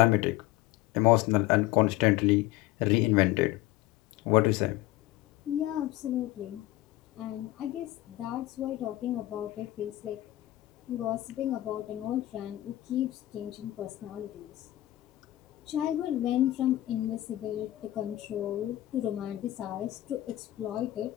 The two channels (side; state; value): right; quieter; 16.1 dB